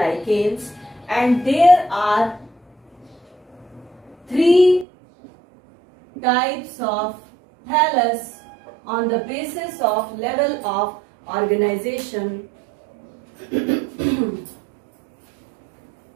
and there are 3 types of thallus on the basis of level of organization.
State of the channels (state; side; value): drops out; left; at 4.9 s